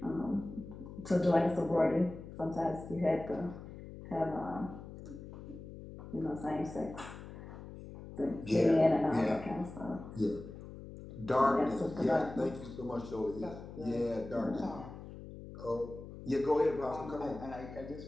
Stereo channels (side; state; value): left; noise; hum, 13 dB below the sound